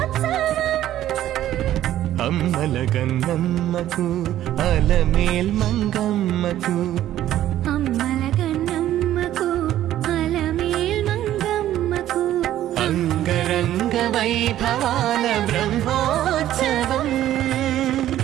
అమ్మల గన్నమ్మకు అలమేల్ మంగమ్మకు అమ్మల గన్నమ్మకు అలమేల్ మంగమ్మకు అంగరంగ వైభవాల బ్రహ్మోత్సవం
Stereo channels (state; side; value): quieter; left; 12.8 dB